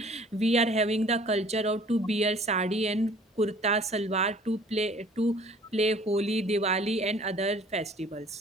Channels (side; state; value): both; normal; correlation 0.52